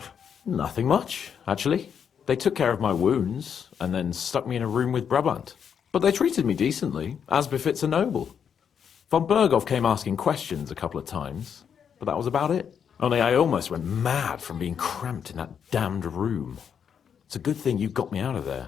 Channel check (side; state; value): right; quieter; 7.6 dB